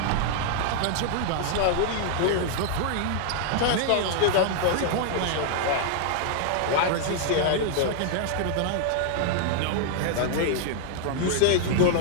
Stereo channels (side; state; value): both; different; correlation 0.00